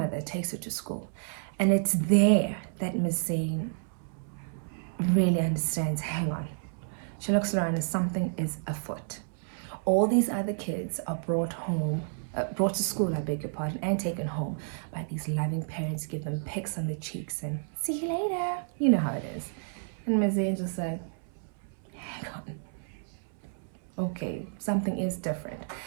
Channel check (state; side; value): silent; left; 57 dB below the other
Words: takes her to school. And it's there that Ms. Zane really understands, hang on. She looks around and something is afoot. All these other kids are brought to school, I beg your pardon, and taken home by these loving parents, give them pecks on the cheeks and see you later. You know how it is. And Ms. Zane just said, hang on. Okay, something is different.